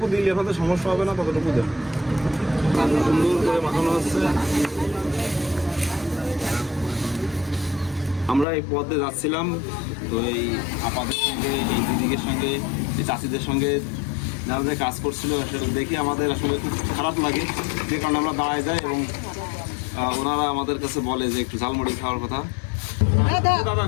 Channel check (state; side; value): drops out; right; at 8.5 s